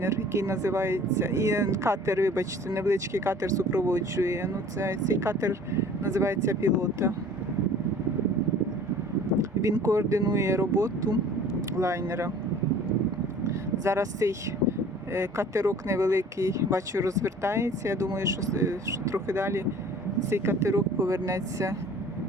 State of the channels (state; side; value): normal; both; correlation 0.48